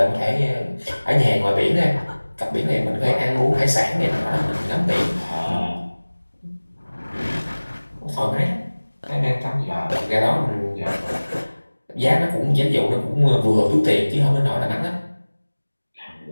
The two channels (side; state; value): both; inverted; correlation -1.00